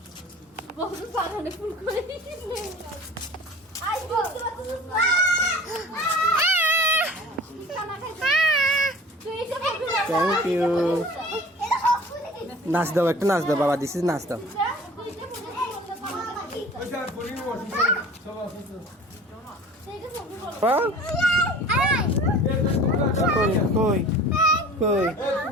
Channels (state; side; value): normal; both; correlation 0.43